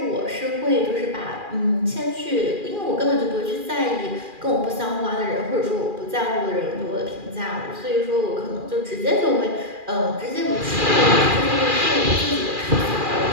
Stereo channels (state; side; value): late; left; 2.4 ms